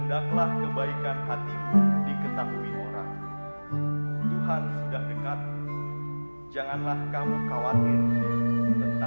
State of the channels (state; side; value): inverted; both; correlation -1.00